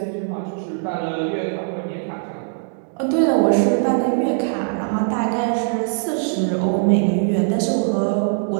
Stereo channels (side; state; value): left; silent; digital silence